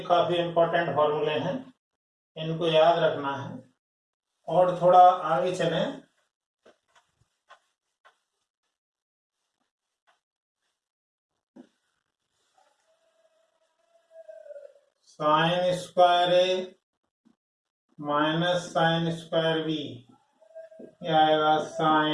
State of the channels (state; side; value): identical; both; correlation 1.00